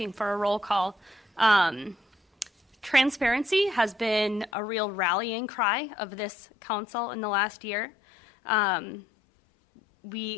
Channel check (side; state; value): right; drops out; at 4.5 s